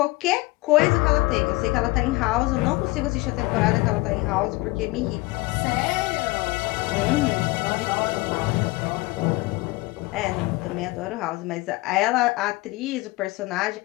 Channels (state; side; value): quieter; right; 22.1 dB